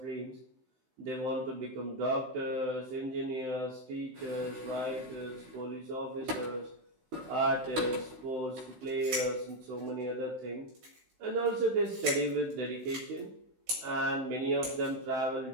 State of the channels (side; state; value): left; late; 16 ms